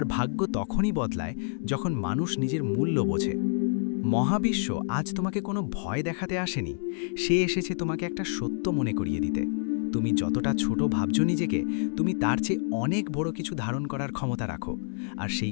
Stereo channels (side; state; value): right; silent; 59 dB below the other